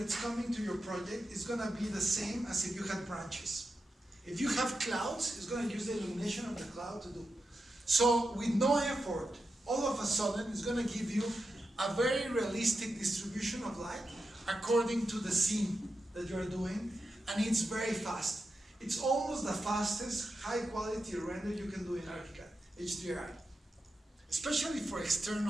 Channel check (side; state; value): both; normal; correlation 0.89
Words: coming to your project is going to be the same as if you had branches. If you have clouds, it's going to use the illumination of the cloud to do. So with no effort, all of a sudden, it's going to give you a very realistic distribution of light according to the scene that you're doing, and it's very fast. It's almost the fastest high quality render you can do in ArchiCAD, HDRI. Especially for